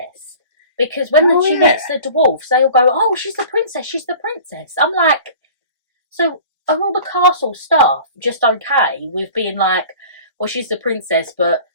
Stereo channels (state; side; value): inverted; both; correlation -0.43